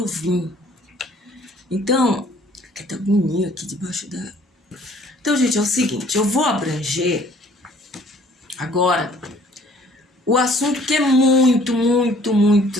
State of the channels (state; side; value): normal; both; correlation 0.57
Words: vim. Então, que tá bonito aqui debaixo da... Então, gente, é o seguinte, eu vou abranger agora o assunto que é muito